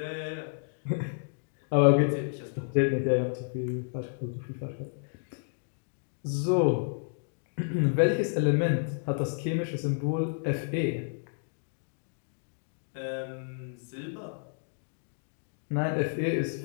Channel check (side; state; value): right; silent; digital silence